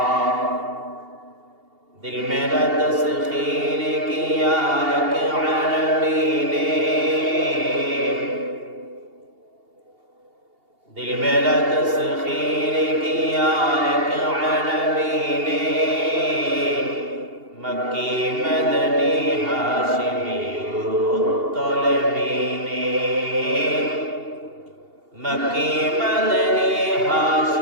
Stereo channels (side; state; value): left; late; 2.8 ms